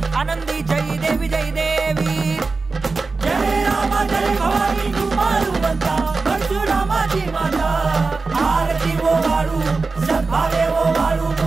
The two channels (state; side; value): quieter; left; 4.0 dB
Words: आनंदी जय देवी जय देवी जय रामा जय भवानी तू मारुवंता परशुरामाची माता आरती वो वाळू सद्भावे वो वाळू